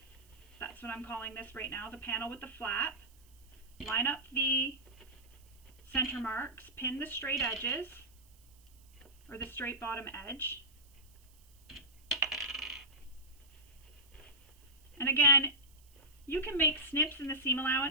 That's what I'm calling this right now, the panel with the flap. Line up the center marks, pin the straight edges, or the straight bottom edge. And again, you can make snips in the seam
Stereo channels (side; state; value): right; noise; hiss, 28 dB below the sound